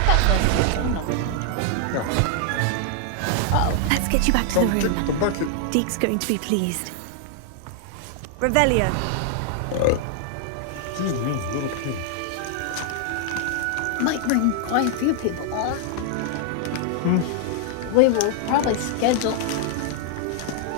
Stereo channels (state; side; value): different; both; correlation 0.00